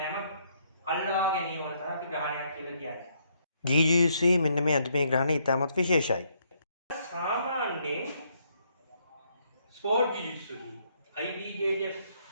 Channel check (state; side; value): inverted; both; correlation -0.72